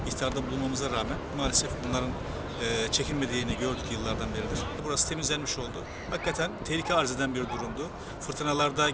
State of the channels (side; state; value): both; identical; correlation 1.00